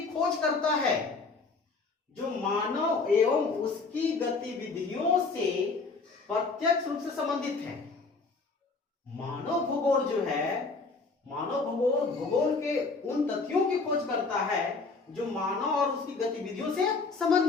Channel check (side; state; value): right; quieter; 4.2 dB